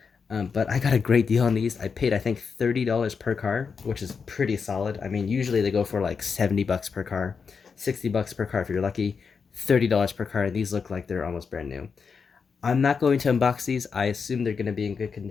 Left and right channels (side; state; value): right; quieter; 5.6 dB